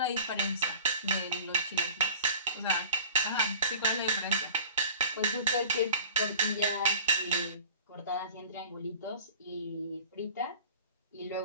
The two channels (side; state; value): both; inverted; correlation -0.43